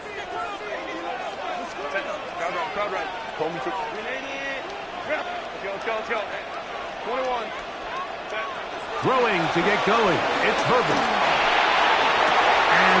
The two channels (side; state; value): both; identical; correlation 1.00